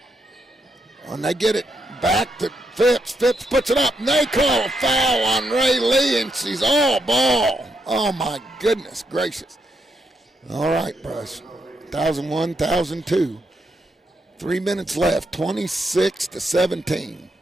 And they get it back to Phipps. Phipps puts it up, and they call a foul on Ray Lee, and she's all ball. Oh, my goodness gracious. All right, Bruce. 1,001, 1,002. 3 minutes left, 26-17.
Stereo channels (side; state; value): both; normal; correlation 0.80